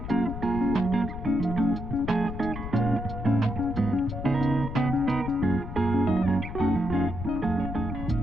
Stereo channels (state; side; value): noise; left; rumble, 7 dB below the sound